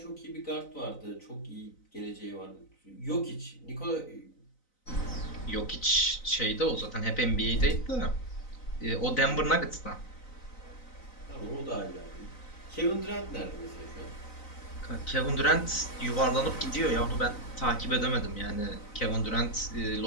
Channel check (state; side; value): late; right; 4.0 ms